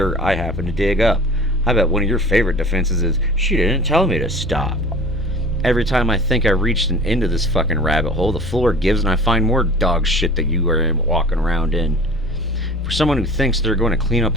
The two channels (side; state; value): both; normal; correlation 0.42